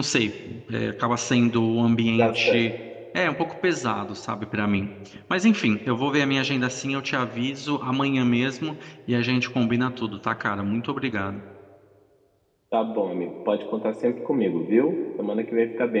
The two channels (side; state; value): both; identical; correlation 1.00